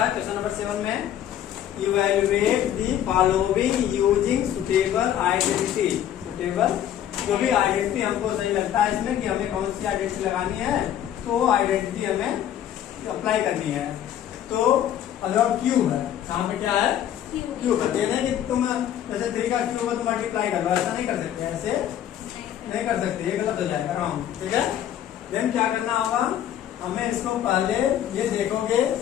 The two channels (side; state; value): right; quieter; 10.8 dB